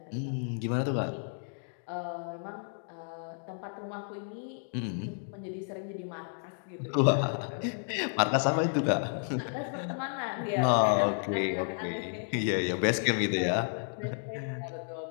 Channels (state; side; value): silent; right; digital silence